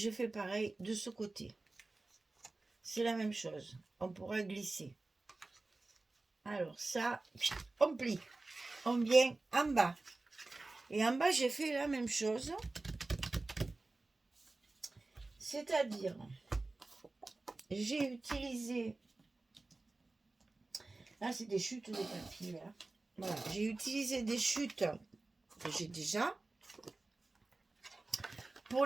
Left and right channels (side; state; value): left; quieter; 3.2 dB